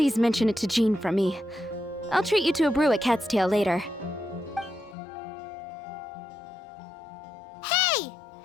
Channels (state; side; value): drops out; right; at 5.0 s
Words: mention it to Jean from me. I'll treat you to a brew at Cat's Tail later. Hey!